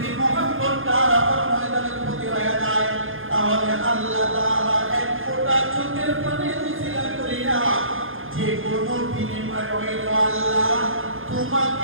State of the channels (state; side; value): late; left; 0.59 ms